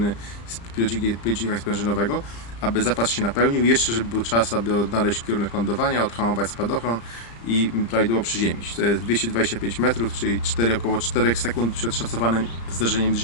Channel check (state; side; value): late; right; 35 ms